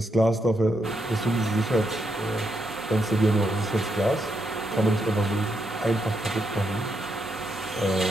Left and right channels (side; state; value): both; normal; correlation 0.80